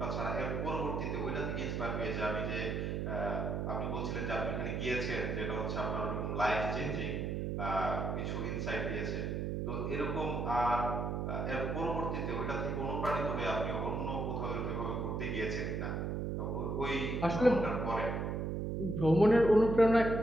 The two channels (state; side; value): noise; right; hum, 1 dB below the sound